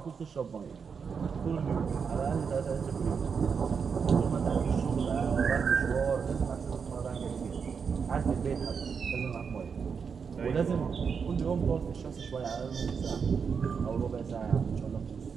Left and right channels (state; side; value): quieter; left; 6.1 dB